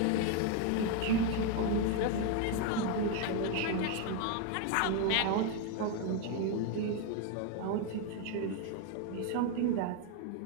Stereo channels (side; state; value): both; different; correlation 0.01